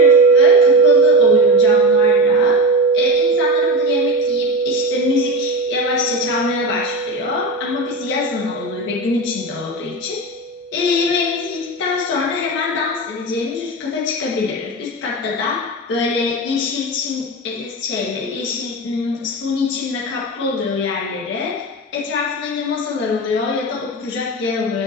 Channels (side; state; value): both; normal; correlation 0.22